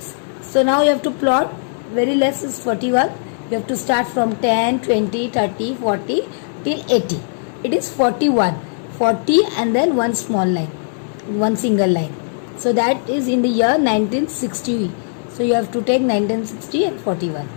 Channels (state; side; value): silent; right; 67 dB below the other